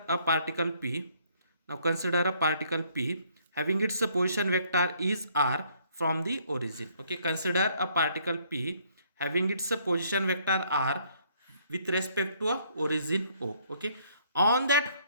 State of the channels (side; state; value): both; inverted; correlation -0.65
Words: a particle p. Now consider a particle p having its position vector is r from the origin. Okay, consider a particle p having its position vector r with respect to a origin o. Okay, on